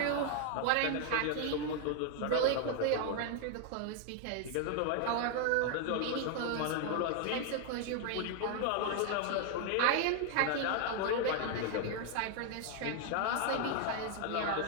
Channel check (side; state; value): both; different; correlation 0.00